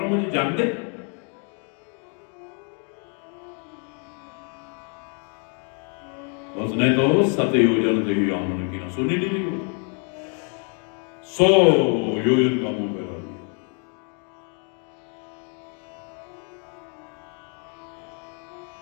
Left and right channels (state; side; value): quieter; right; 39.9 dB